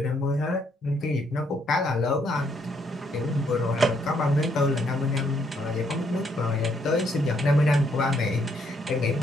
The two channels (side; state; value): both; normal; correlation 0.72